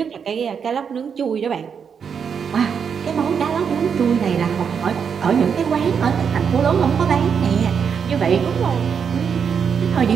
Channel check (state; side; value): quieter; left; 6.8 dB